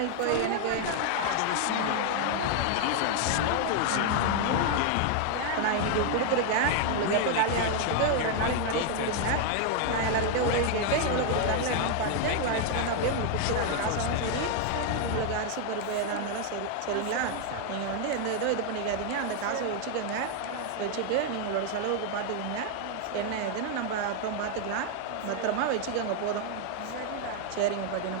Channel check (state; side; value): different; both; correlation 0.00